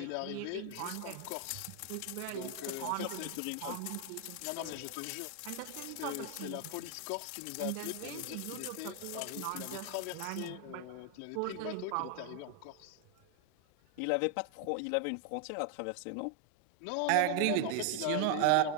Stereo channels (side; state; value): both; different; correlation 0.00